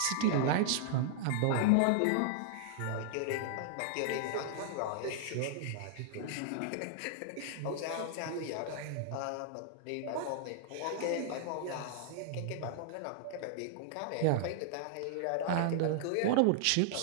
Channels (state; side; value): different; both; correlation -0.01